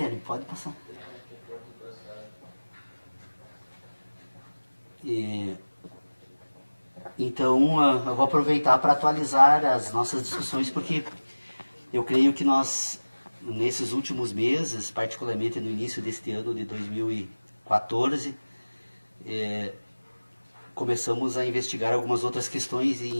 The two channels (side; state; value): both; inverted; correlation -1.00